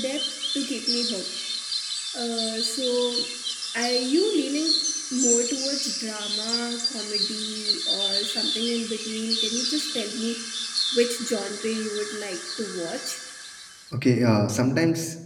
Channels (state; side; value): identical; both; correlation 1.00